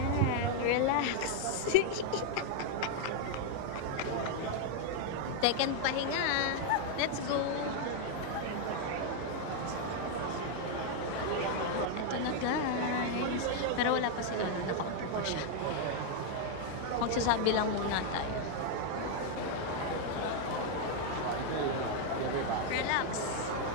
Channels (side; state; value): both; different; correlation 0.00